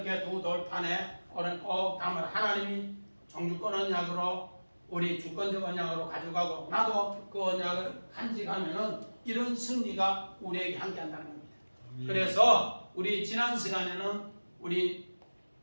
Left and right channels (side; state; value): both; inverted; correlation -1.00